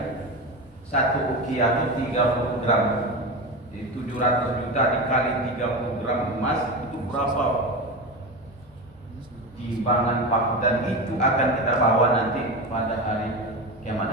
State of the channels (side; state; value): both; normal; correlation 0.22